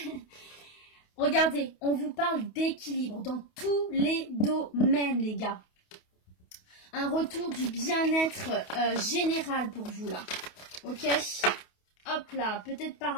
Regardez, on vous parle d'équilibre dans tous les domaines, les gars. Un retour du bien-être général pour vous, là. Ok? Hop là, peut-être par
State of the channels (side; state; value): right; late; 28 ms